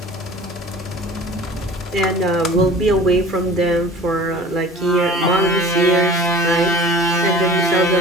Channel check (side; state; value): both; normal; correlation 0.44